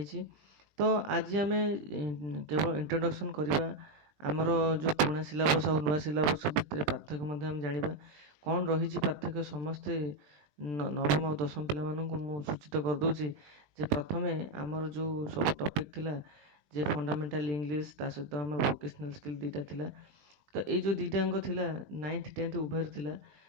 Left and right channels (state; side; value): late; left; 20 ms